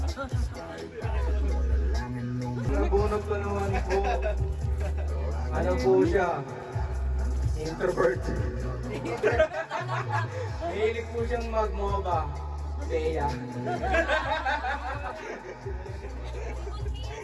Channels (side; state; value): both; identical; correlation 1.00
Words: Nabunot ko naman po. Ano po siya? Introvert. Mahilig po siyang mag-MOBA. Bea.